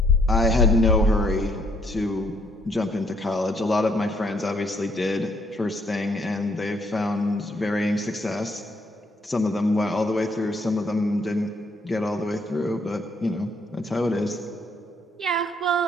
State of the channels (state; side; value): normal; both; correlation 0.69